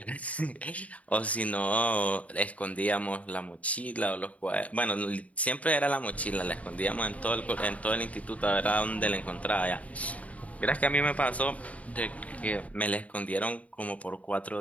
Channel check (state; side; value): late; right; 0.068 ms